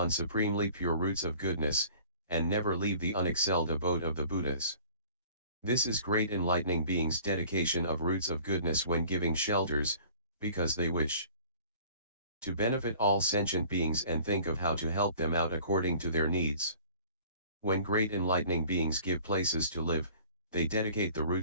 supremely pure roots of goodness, and never leave the unexcelled abode of the Buddhas. This is great enlightening beings' dedication of roots of goodness when giving shelters, because they wish to benefit all sentient beings and think of how to help them out according to their needs. When great enlightening beings give places to live, they dedicate the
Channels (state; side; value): inverted; both; correlation -0.49